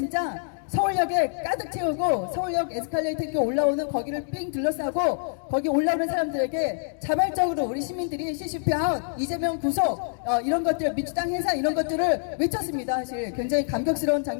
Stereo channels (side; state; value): right; silent; digital silence